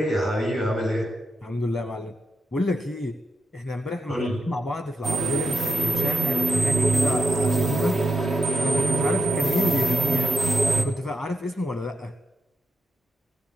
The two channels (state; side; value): normal; both; correlation 0.82